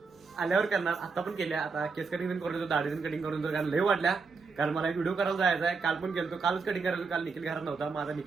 आल्यावर करणार. आता पण केल्या आता केस कटिंग पण करून दाढी पण कटिंग करून कारण लय वाटल्या कारण मला एक व्हिडिओ करायला जायचा आहे. काल पण गेलो कालच कटिंग करायचं काल निखिल घरात नव्हता माझा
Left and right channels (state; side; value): quieter; left; 4.7 dB